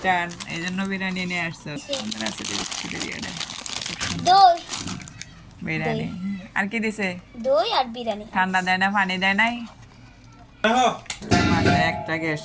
এই জন্য বিরিয়ানি নিয়ে আসছো। বিরিয়ানি আর কি দিছে? দই আর বিরিয়ানি। ঠান্ডা দেয় না, পানি দেয় নাই? মাসে একটা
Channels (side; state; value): both; identical; correlation 1.00